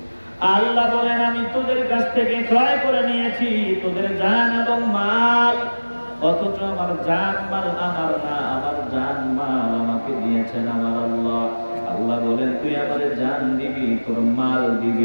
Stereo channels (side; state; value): both; inverted; correlation -1.00